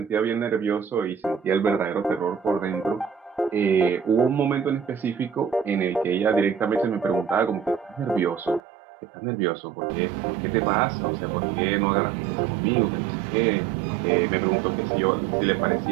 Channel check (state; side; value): drops out; left; at 8.6 s